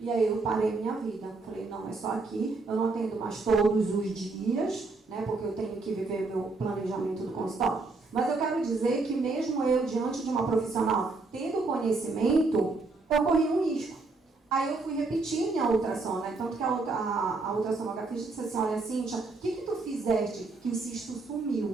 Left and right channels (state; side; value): quieter; left; 3.7 dB